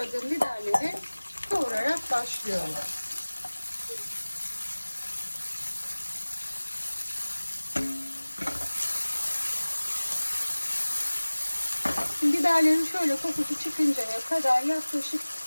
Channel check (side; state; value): both; inverted; correlation -1.00